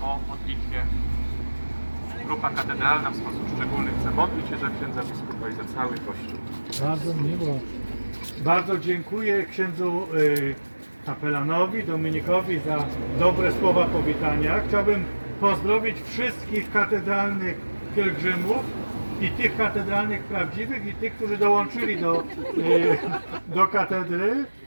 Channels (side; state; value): both; inverted; correlation -1.00